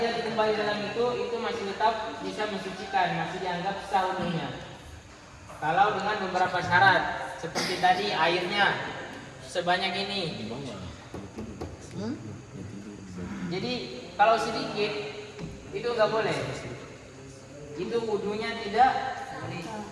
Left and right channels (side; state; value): both; identical; correlation 1.00